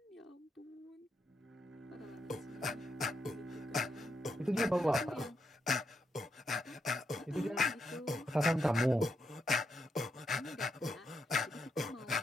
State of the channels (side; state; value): both; normal; correlation 0.81